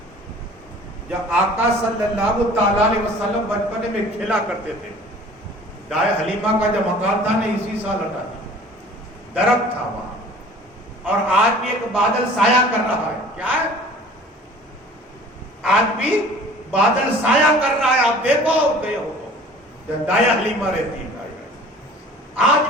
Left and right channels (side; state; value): both; normal; correlation 0.47